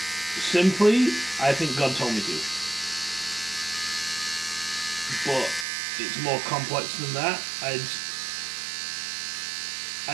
Simply, I think God told me to. But it's more complex than that.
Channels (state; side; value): drops out; left; at 5.7 s